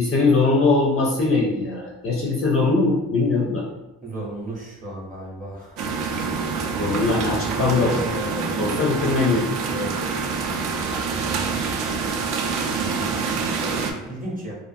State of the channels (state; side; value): normal; both; correlation 0.39